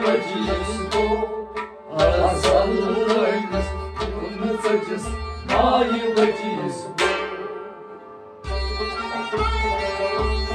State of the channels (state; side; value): identical; both; correlation 1.00